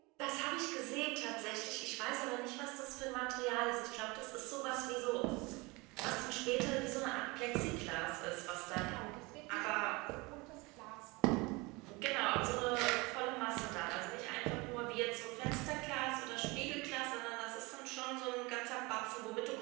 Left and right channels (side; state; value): left; quieter; 24.9 dB